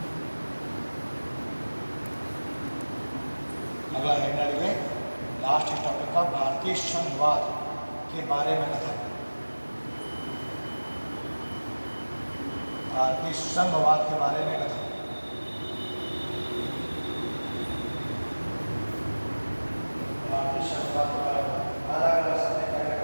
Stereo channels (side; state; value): both; inverted; correlation -1.00